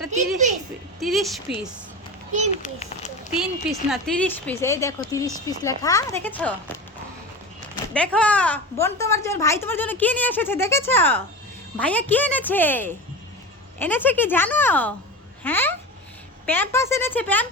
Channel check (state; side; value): normal; both; correlation 0.27